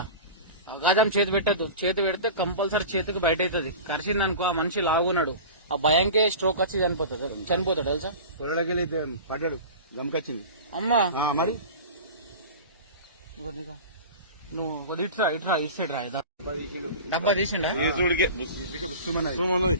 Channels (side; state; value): both; inverted; correlation -0.34